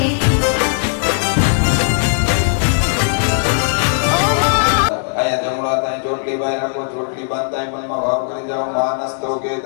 आया जमड़ा ताई चोटली बाय को चोटली बांधताई पण में भाव करी जाओ मानस्तो के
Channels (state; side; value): silent; right; 68 dB below the other